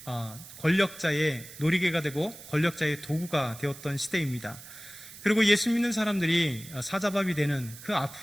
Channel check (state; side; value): noise; right; hiss, 16 dB below the sound